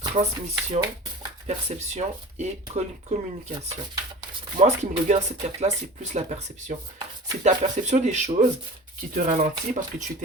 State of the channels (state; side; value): normal; both; correlation 0.38